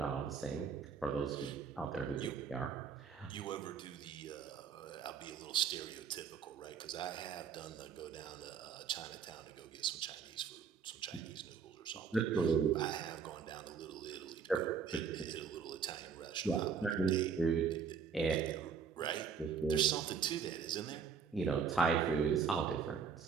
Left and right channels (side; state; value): left; quieter; 6.3 dB